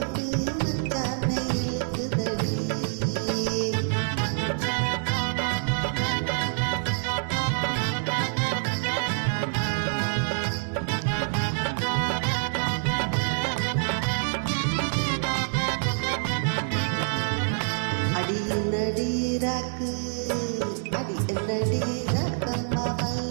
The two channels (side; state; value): left; silent; digital silence